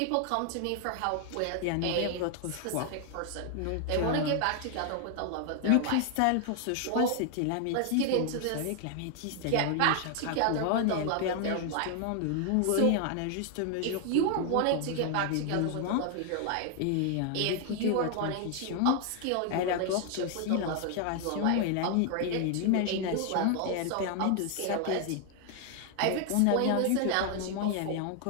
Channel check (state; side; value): different; both; correlation 0.00